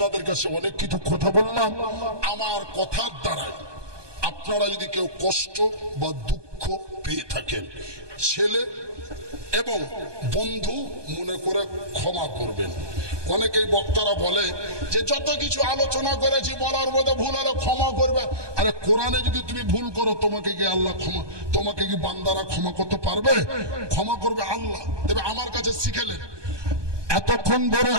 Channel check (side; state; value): left; late; 1.2 ms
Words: কাছে অনেক কিছু কথা বললাম। আমার কথার দ্বারাই আপনারা যদি কেউ কষ্ট বা দুঃখ পেয়ে থাকেন, ছেলে এবং বন্ধু মনে করে ক্ষমা করবেন। অনেকেই বক্তারা বলে যে যত কিছু আলোচনা করেছি বলার মধ্যে ভুল হলে ক্ষমা করবে। আরে কোরআনে যদি তুমি ভুল করো, তোমাকে কি আল্লাহ ক্ষমা, তোমাকে কি বান্দারা ক্ষমা করতে পারবে? ক্ষমা করবে আল্লাহ। তবে আমার কাছে শিখেলেন, এতক্ষণ ধরে